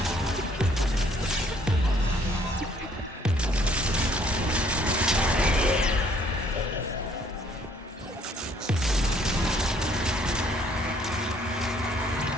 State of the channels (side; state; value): both; normal; correlation 0.62